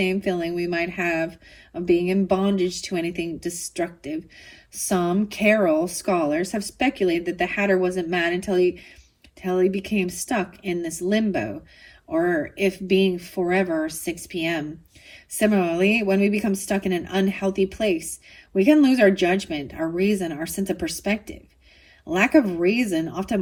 feeling we might have of being in bondage to anything destructive. Some Carol scholars have speculated that the Hatter wasn't mad until he became stuck in this limbo, or if being forever 6 p.m. Similarly, when we become stuck in an unhealthy place, we can lose our judgment, our reason, our sense of perspective. Lack of reason often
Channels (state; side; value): identical; both; correlation 1.00